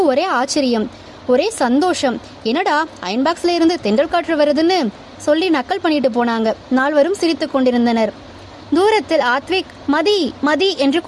ஒரே ஆச்சரியம், ஒரே சந்தோஷம். என்னடா அயன் பாக்ஸ்ல இருந்து தென்றல் காற்று வருதுன்னு சொல்லி நக்கல் பண்ணிட்டு போனாங்க. நால்வரும் சிரித்து கொண்டிருந்தனர். தூரத்தில் ஆத்விக் மதி மதி என்று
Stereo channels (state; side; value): identical; both; correlation 1.00